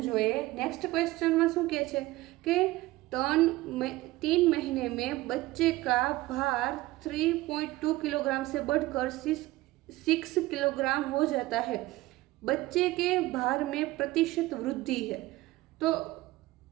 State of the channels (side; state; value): left; quieter; 18.4 dB